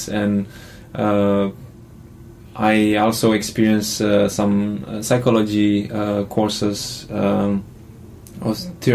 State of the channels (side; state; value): both; identical; correlation 1.00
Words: and I also experienced some psychology courses or